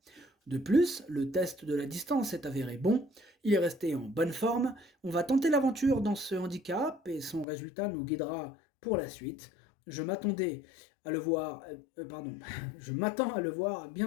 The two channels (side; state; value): right; drops out; at 7.5 s